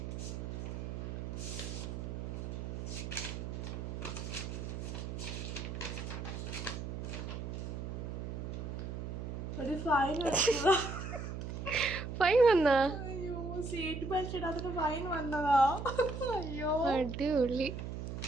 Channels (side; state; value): right; noise; hum, 5 dB below the sound